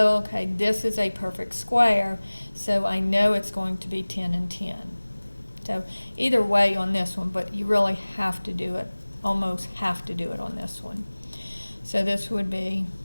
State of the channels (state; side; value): inverted; both; correlation -1.00